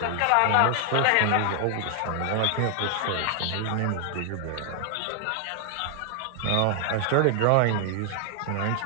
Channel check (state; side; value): different; both; correlation 0.00